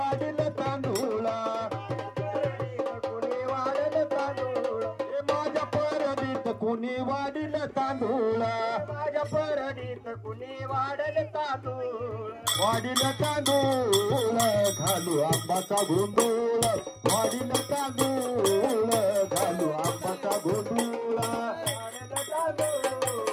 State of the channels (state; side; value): identical; both; correlation 1.00